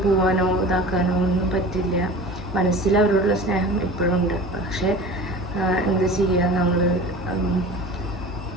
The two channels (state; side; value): normal; both; correlation 0.37